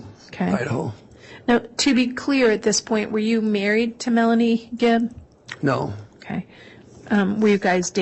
Okay. Idaho. Now, to be clear at this point, were you married to Melanie Gibb? No, Okay. Were you guys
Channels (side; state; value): both; identical; correlation 1.00